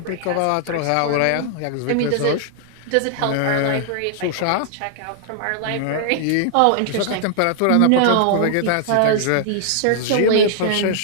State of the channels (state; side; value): different; both; correlation -0.01